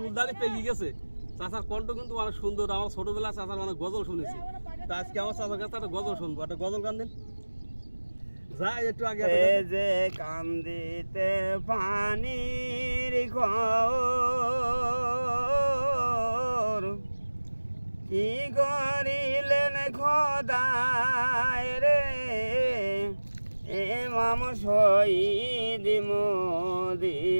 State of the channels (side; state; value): both; inverted; correlation -1.00